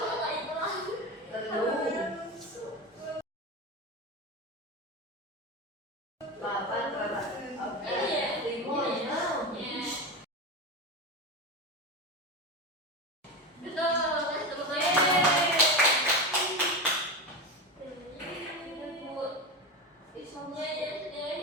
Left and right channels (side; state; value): both; normal; correlation 0.20